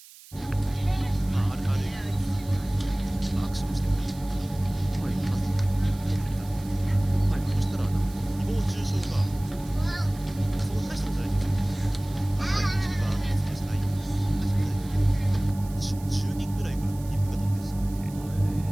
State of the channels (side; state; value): right; noise; hiss, 20 dB below the sound